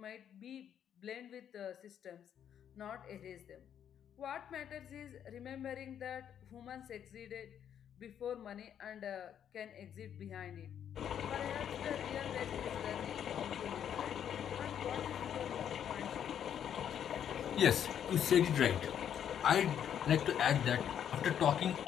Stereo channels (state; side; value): quieter; right; 9.2 dB